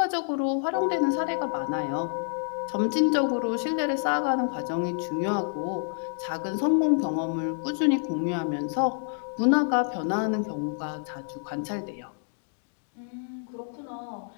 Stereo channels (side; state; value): right; silent; 59 dB below the other